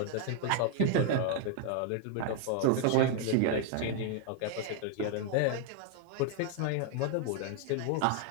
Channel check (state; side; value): different; both; correlation 0.00